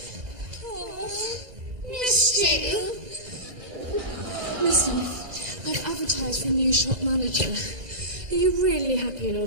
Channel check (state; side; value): late; left; 2.0 ms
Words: Oh, Missed you. listen, I've advertised for a new shop manager. Are you really happy in your